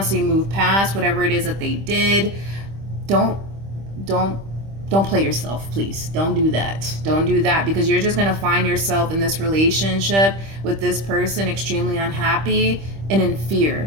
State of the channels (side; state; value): left; late; 25 ms